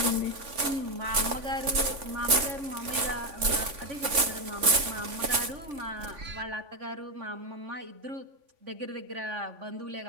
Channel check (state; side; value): late; left; 3.5 ms